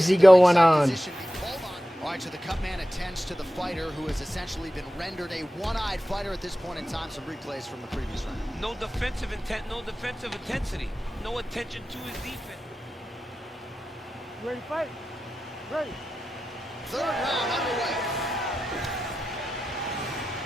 going on. All right, so the cut man attends to the fighter who has essentially been rendered a one-eyed fighter at this point in time. Some replays from the previous round. No defensive intent, no defensive intensity. No attention to his defense. Ready to fight? Ready. Third round underway.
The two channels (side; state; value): both; normal; correlation 0.92